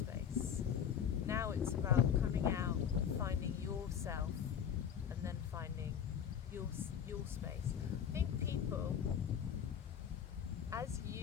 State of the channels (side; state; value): right; quieter; 8.3 dB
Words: Now it's about coming out, finding yourself, and then finding your space. I think people, as